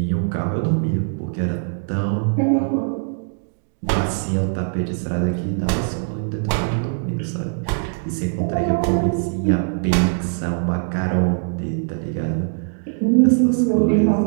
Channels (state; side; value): silent; left; 61 dB below the other